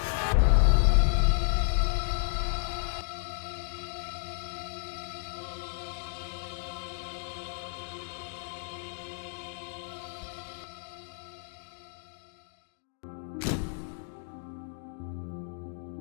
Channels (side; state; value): right; silent; digital silence